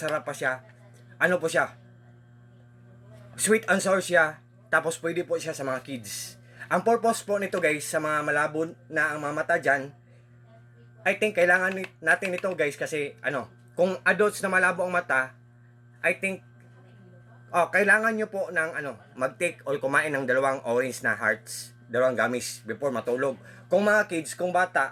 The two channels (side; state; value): both; identical; correlation 1.00